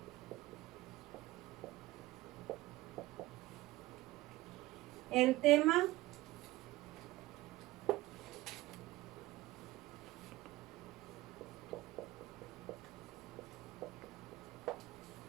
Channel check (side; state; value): left; quieter; 18.0 dB